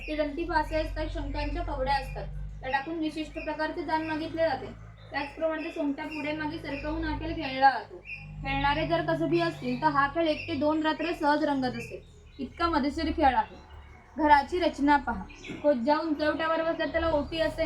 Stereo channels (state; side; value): identical; both; correlation 1.00